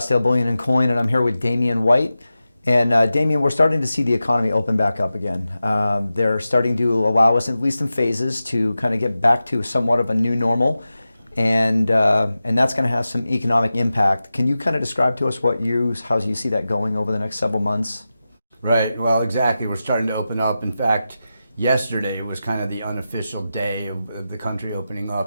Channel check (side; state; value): both; inverted; correlation -0.93